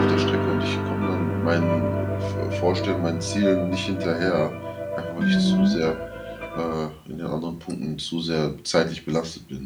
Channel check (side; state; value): both; identical; correlation 1.00